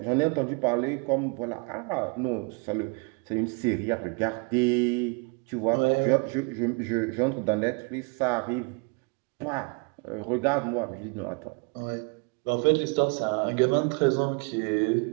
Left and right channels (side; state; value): left; quieter; 32.7 dB